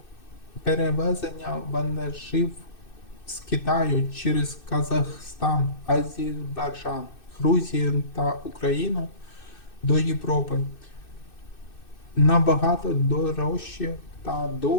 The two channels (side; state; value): right; late; 2.6 ms